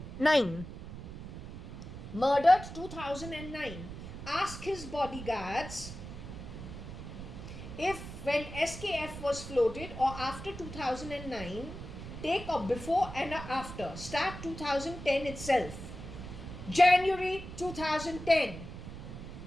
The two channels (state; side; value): noise; right; rumble, 10 dB below the sound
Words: Murdered 2009. Ask his bodyguards if when SKF was floated or after 2009, take a before and a after. Start 2010 itself. January 2010.